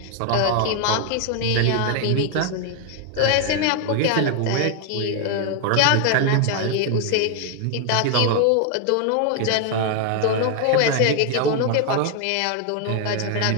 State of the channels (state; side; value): different; both; correlation 0.00